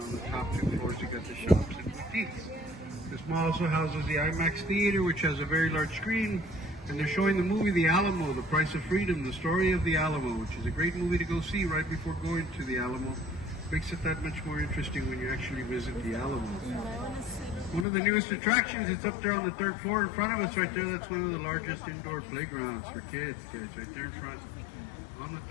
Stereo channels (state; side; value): drops out; right; at 17.9 s